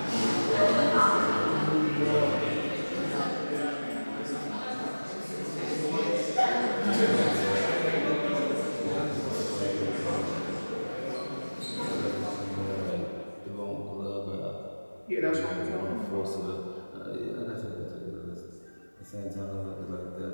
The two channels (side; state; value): both; inverted; correlation -1.00